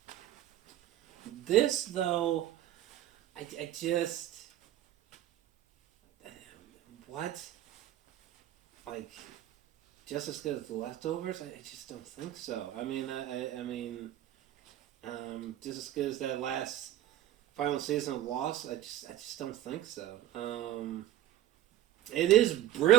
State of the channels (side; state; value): left; quieter; 13.3 dB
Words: This though, I just what? Like, just as good as the Leftovers? I just don't think so. I mean, just as good as that last final season of Lost? I just don't think so. It is